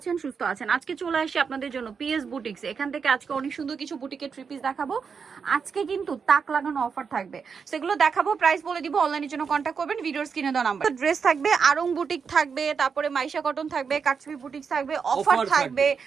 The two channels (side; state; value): left; quieter; 6.0 dB